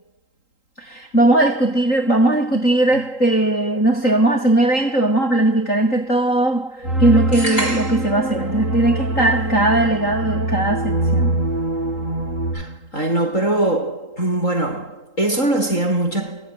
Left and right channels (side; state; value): right; late; 3.8 ms